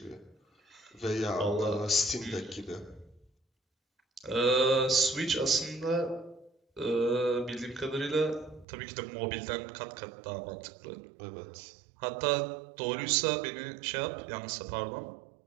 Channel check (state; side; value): drops out; left; at 8.7 s